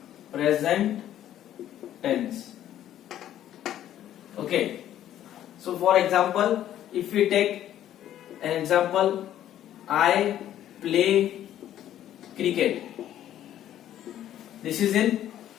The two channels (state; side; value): quieter; right; 11.8 dB